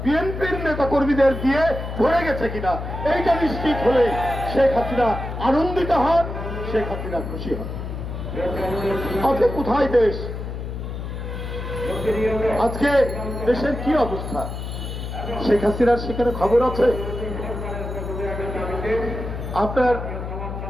বিএনপির নেতা কর্মীদের দিয়ে ভরে গেছে কিনা, এইটা নিশ্চিত হলে শেখ হাসিনা আনন্দিত হন, শেখ হাসিনা খুশি হন। আজকে কোথায় দেশ? আজকে দেশের কি অবস্থা? শেখ হাসিনার সেখানে খবর আছে? আপনার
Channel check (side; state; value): left; noise; hum, 6 dB below the sound